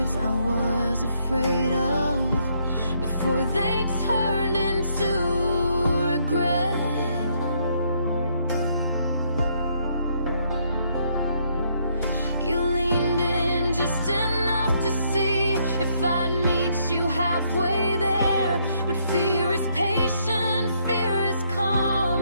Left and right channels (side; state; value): both; inverted; correlation -0.71